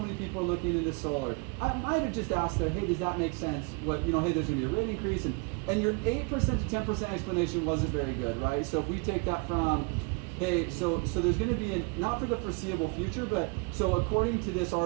people are looking into solar. I might have just asked there, hey, does that make sense? What, hey, there's gonna be a rate increase, and your 8% to 10% explanation wasn't very good, right? So if we take that from, hey, so there's gonna be not for the foreseeable future, but so according to this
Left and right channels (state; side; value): quieter; left; 31.3 dB